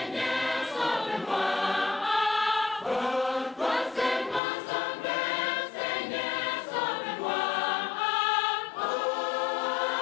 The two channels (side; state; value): right; drops out; at 4.4 s